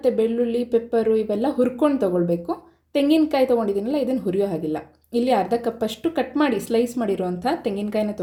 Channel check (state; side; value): identical; both; correlation 1.00